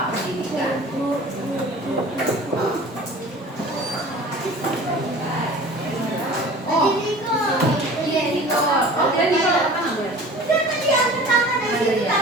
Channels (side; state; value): both; normal; correlation 0.42